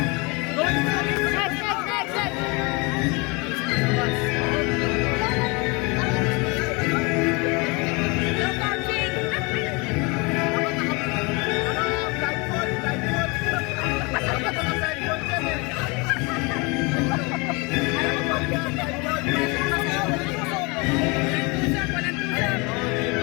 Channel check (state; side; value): quieter; right; 28.3 dB